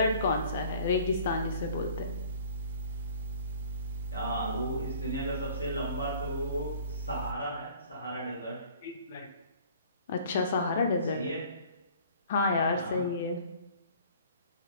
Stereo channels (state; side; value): inverted; both; correlation -0.51